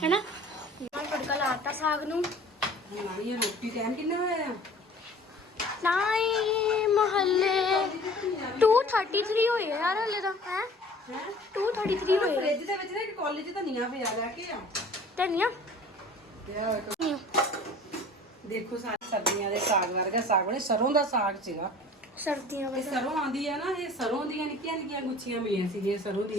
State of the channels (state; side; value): normal; both; correlation 0.46